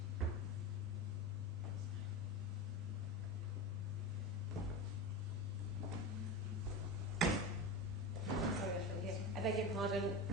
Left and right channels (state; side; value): normal; both; correlation 0.24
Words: I beg your pardon.